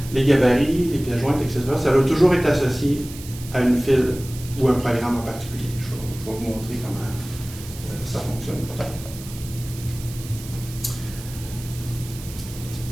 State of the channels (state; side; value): noise; right; hiss, 15 dB below the sound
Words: les gabarits, les pièces jointes, etc., ça doit toujours être associé à une file ou un programme en particulier. Je vais vous montrer comment ça fonctionne peut-être.